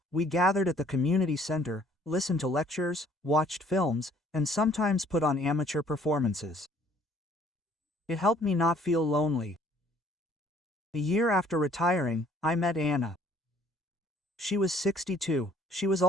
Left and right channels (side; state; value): both; normal; correlation 0.59